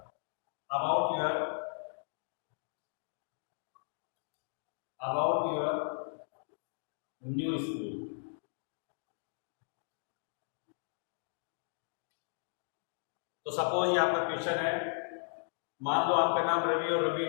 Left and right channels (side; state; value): right; silent; digital silence